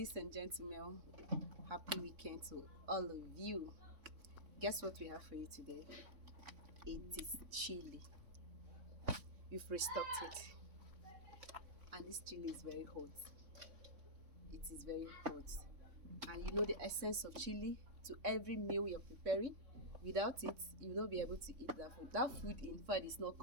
and gentlemen. Happy weekend to all of you. Guess what we have for you today? It is chili. We've restocked it, and this chili is very hot. It is very hot, and you know the essence of chili to every meal you're preparing. Without it, you will not be able to eat that food. That food, in fact, is not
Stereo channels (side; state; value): left; late; 3.5 ms